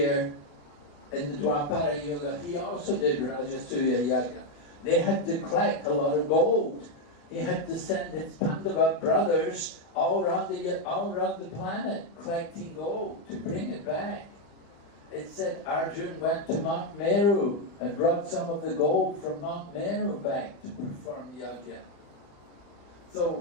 in the Dwapara Yuga, he also did Rajasuya Yagya. They had to collect a lot of gold. He had to send his Pandava brothers all around the planet collecting gold to bring it back. It said Arjun went to Mount Meru and brought some of the gold from Mount Meru back to perform yagya.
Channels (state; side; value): late; right; 35 ms